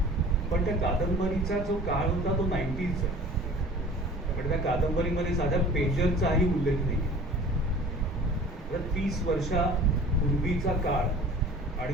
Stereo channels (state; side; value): normal; both; correlation 0.45